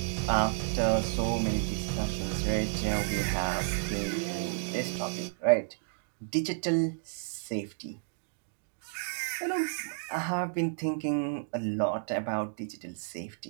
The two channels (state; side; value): silent; left; digital silence